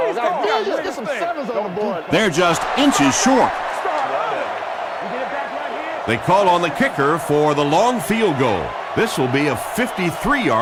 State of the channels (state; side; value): identical; both; correlation 1.00